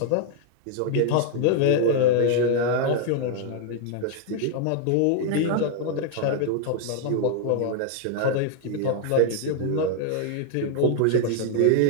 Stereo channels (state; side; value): different; both; correlation 0.00